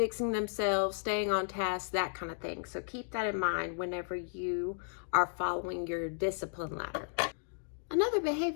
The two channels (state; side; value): silent; right; digital silence